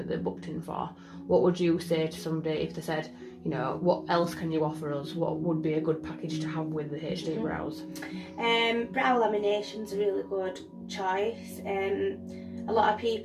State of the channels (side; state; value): both; identical; correlation 1.00